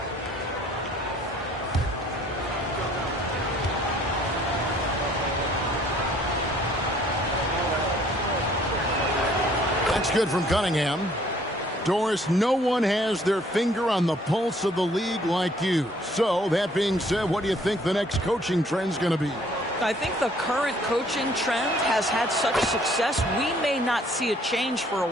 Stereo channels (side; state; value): both; normal; correlation 0.60